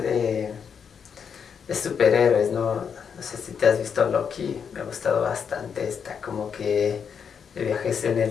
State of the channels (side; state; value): right; quieter; 7.0 dB